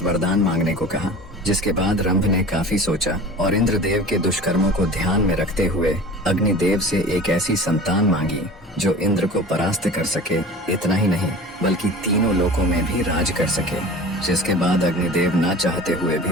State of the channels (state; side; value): normal; both; correlation 0.38